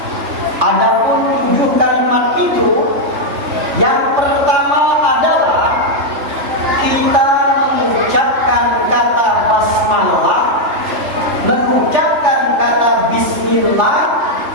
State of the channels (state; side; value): late; left; 3.4 ms